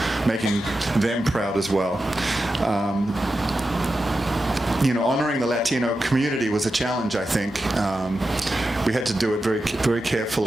proud as well. You know, honoring the Latino community was a challenge, I think. We had to do it very, very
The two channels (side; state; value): both; normal; correlation 0.90